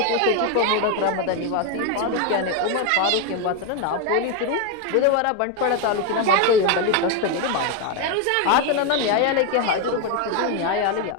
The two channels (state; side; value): different; both; correlation 0.02